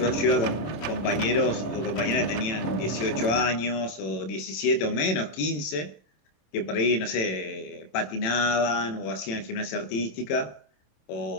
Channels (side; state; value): right; late; 27 ms